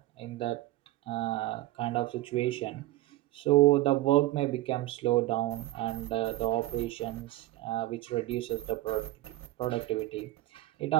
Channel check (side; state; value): left; quieter; 17.5 dB